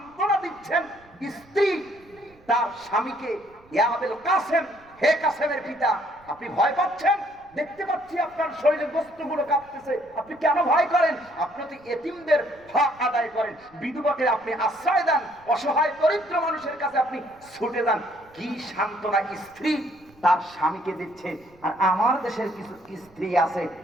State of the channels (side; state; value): right; noise; rumble, 28 dB below the sound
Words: দিচ্ছেন স্ত্রী তার স্বামীকে, ইয়া আবুল কাসেম, হে কাসেমের পিতা, আপনি ভয় পাচ্ছেন? দেখতে পাচ্ছি আপনার শরীরের বস্তুগুলো কাঁপতেছে, আপনি কেন ভয় করেন? আপনি তো এতিমদের হক আদায় করেন, বিধবাকে আপনি আশ্রয় দেন, অসহায় দরিদ্র মানুষের কাছে আপনি ছুটে যান। কি সান্ত্বনা স্ত্রী তার স্বামীকে দিচ্ছে। আর আমার দেশের কিছু স্ত্রী আছে